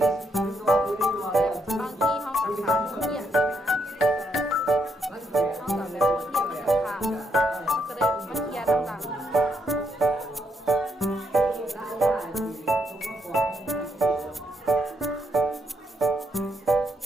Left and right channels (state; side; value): normal; both; correlation 0.77